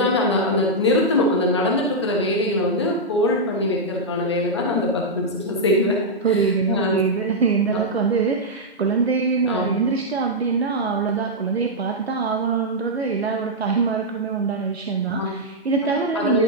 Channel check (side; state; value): both; normal; correlation -0.05